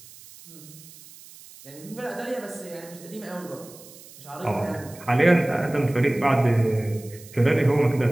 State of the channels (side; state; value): right; noise; hiss, 20 dB below the sound